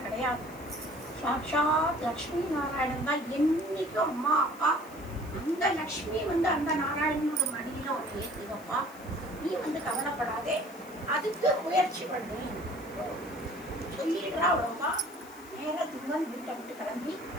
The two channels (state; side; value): noise; left; hiss, 22 dB below the sound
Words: கிடையாது. சாட்சாத் லக்ஷ்மி நாராயணன் தான் என்னைக்கும் அம்மா அப்பா. அந்த லக்ஷ்மி அந்த நாராயணனோட மடியில ஒரு ஏற்றுதப்பா, நீ கவலைப்படாதே, அதுக்கு முயற்சி பண்ணு சொல்லிடுறா. அவ்வளோவா நேர திருமன் வீட்டை விட்டு கிளம்பி